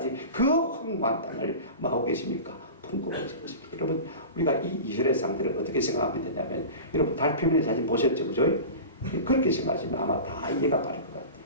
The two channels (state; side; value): inverted; both; correlation -0.33